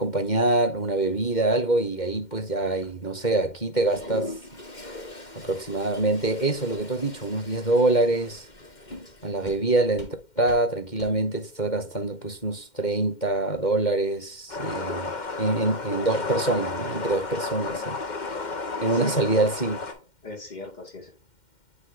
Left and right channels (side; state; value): right; late; 2.1 ms